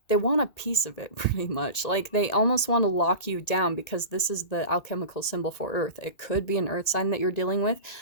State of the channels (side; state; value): right; late; 1.9 ms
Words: they want a piece of it pretty much. Like they almost want to lock you down because this is the alchemical symbol for earth. It could be an earth sign that you're dealing with,